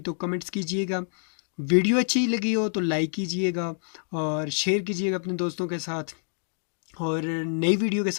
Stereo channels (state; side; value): silent; right; digital silence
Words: कमेंट्स कीजिएगा। वीडियो अच्छी लगी हो तो लाइक कीजिएगा और शेयर कीजिएगा अपने दोस्तों के साथ, और नई वीडियो के